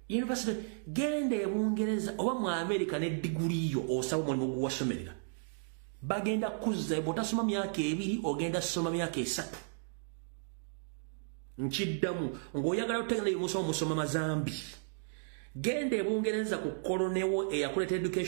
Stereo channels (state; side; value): silent; left; digital silence